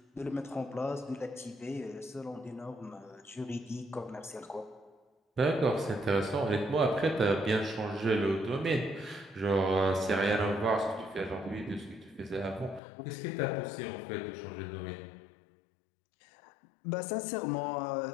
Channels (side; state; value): right; drops out; at 12.8 s